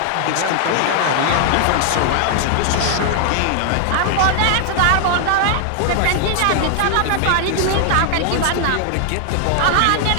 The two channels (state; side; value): different; both; correlation -0.01